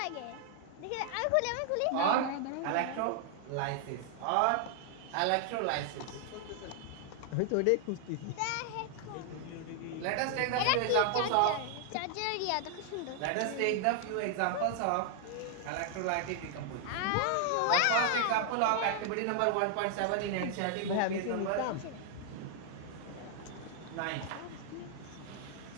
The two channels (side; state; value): both; different; correlation 0.00